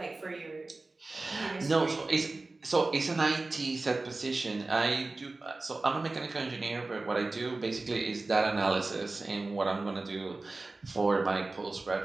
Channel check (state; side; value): quieter; left; 3.3 dB